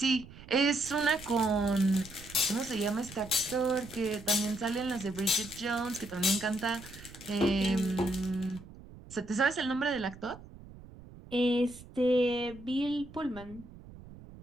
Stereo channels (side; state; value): right; noise; rumble, 18 dB below the sound